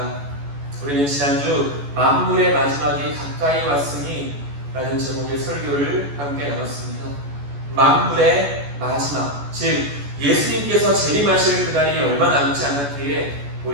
우리는 지난주 만물의 마지막이 가까이 왔으니 라는 제목의 설교를 함께 나눴습니다. 만물의 마지막, 즉 예수님께서 재림하실 그날이 얼마 남지 않았기에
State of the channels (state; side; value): late; left; 14 ms